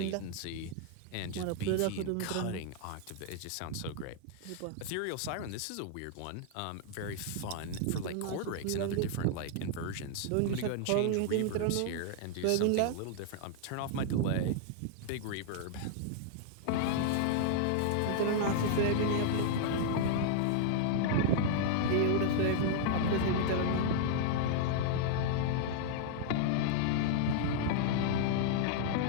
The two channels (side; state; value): both; different; correlation -0.01